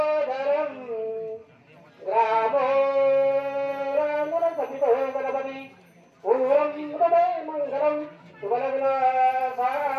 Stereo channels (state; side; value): identical; both; correlation 1.00